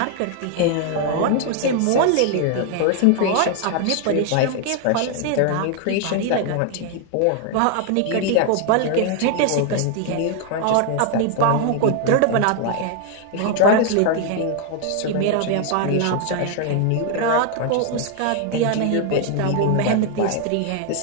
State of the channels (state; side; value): different; both; correlation 0.00